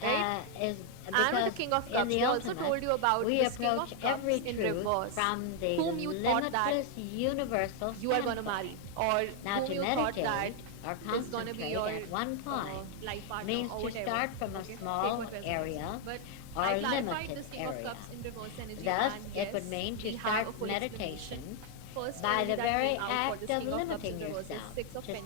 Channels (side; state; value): both; different; correlation 0.00